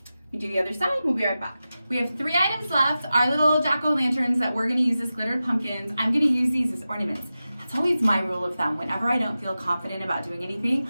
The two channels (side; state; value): both; inverted; correlation -0.94